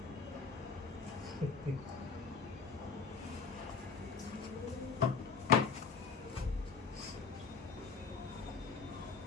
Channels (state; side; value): quieter; right; 5.3 dB